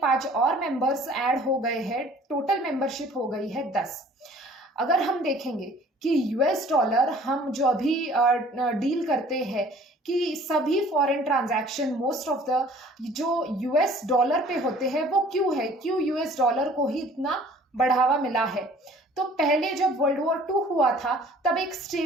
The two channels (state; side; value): normal; both; correlation 0.52